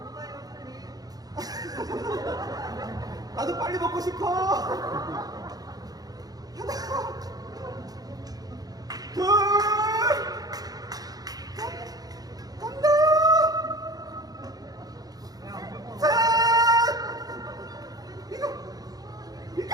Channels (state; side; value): late; left; 0.18 ms